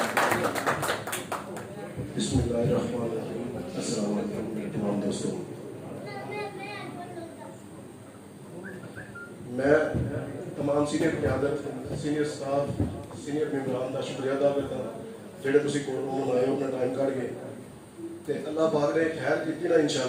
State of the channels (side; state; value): both; identical; correlation 1.00